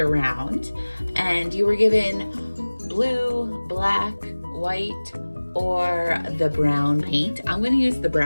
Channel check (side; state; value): both; inverted; correlation -1.00